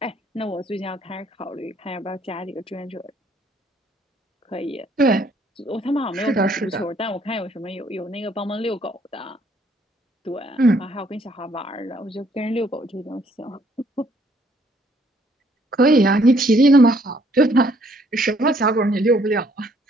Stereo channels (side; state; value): both; normal; correlation 0.65